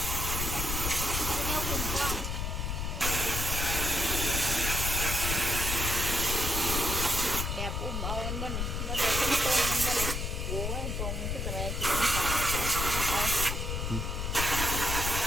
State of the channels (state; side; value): noise; left; rumble, 2 dB below the sound